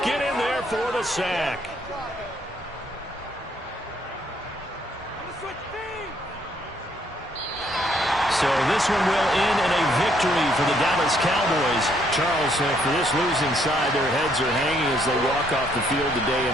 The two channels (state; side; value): normal; both; correlation 0.69